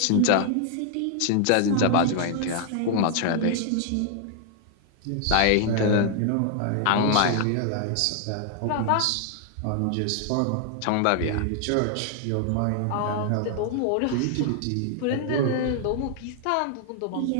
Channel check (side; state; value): both; different; correlation 0.00